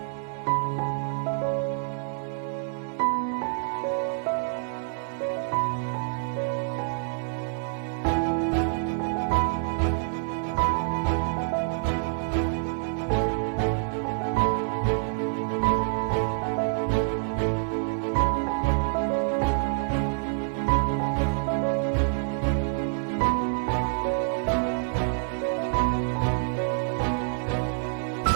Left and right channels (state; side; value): silent; left; digital silence